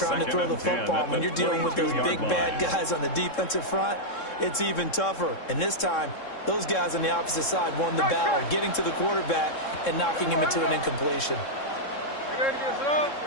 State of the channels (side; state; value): right; late; 3.7 ms